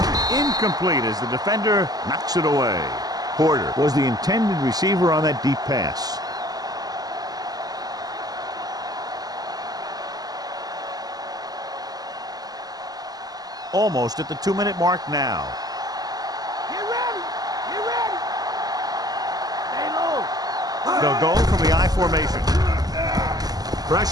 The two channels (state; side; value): late; left; 0.18 ms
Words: Incomplete as the defender knocks it away. Porter was the intended receiver on that deep pass. Almost at the 2-minute mark now. Get ready. Get ready. Stay low. They'll go from the I formation.